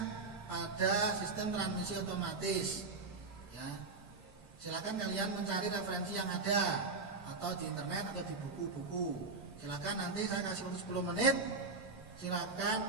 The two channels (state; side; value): quieter; left; 3.9 dB